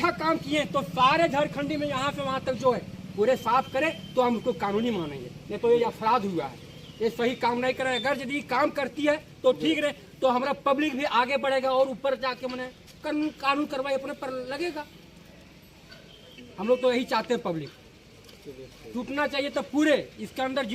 काम किए तो सारे झारखंडी में यहाँ से वहाँ तक जो है पूरे साफ करें तो हम उसको कानूनी मानेंगे। नहीं तो ये अपराध हुआ है, ये सही काम नहीं करे। अगर यदि काम करती है तो ठीक रहे, तो हमारा पब्लिक भी आगे बढ़ेगा और ऊपर जाके मैंने कानून कार्रवाई अपने पर लगेगा। हम लोग तो यही चाहते हैं, पब्लिक टूटना चाहिए तो पूरे इसके अंदर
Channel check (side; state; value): both; identical; correlation 1.00